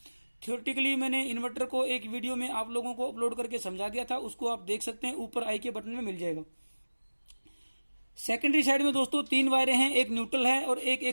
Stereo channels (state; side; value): inverted; both; correlation -1.00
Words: थ्योरेटिकली मैंने इन्वर्टर को एक वीडियो में आप लोगों को अपलोड करके समझा दिया था, उसको आप देख सकते हैं, ऊपर आई के बटन में मिल जाएगा। सेकेंडरी साइड में दोस्तों 3 वायरें हैं, एक न्यूट्रल है और एक